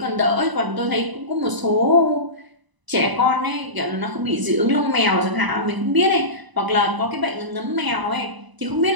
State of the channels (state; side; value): late; left; 1.0 ms